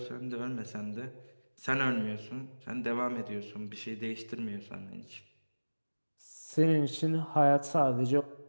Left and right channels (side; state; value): both; inverted; correlation -1.00